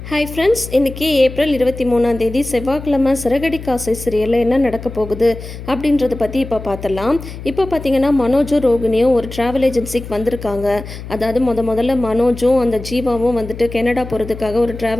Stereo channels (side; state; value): left; noise; hum, 11 dB below the sound